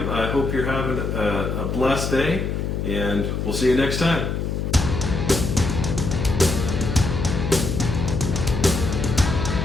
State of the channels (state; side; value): noise; left; hum, 2 dB below the sound